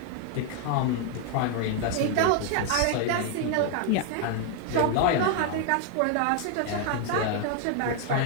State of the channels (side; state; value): both; different; correlation 0.00